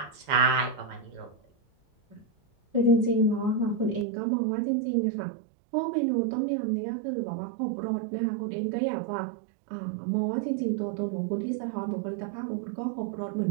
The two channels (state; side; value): drops out; left; at 4.0 s